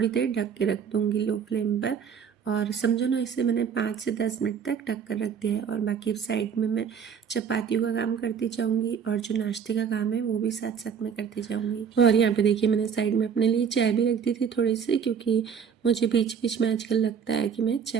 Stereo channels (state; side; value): quieter; left; 7.1 dB